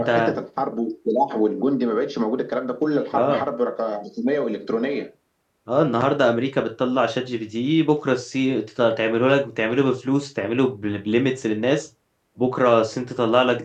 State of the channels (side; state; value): both; identical; correlation 1.00